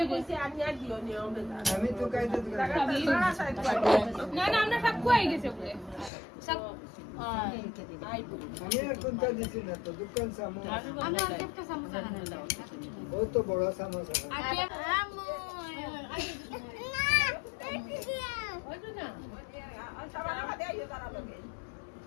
কইছি আমি আর দিও নিও আমি তো কাইতে না না আমরা সব কই গেছে বলে সব আমি আর কোনটা দিছি না তো দোকান সামো আমরা একটা সমস্যা না ও তো বড় সমস্যা আমু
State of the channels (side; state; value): right; drops out; at 6.1 s